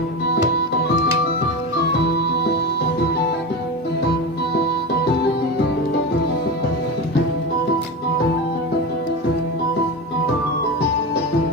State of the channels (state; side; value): normal; both; correlation 0.22